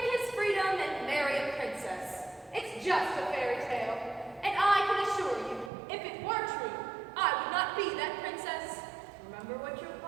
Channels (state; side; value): drops out; left; at 5.7 s